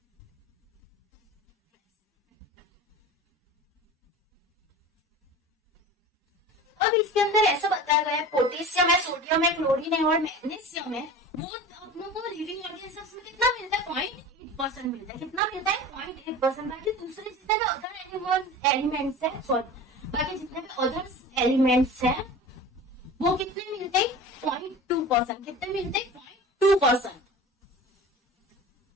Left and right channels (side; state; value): both; normal; correlation 0.36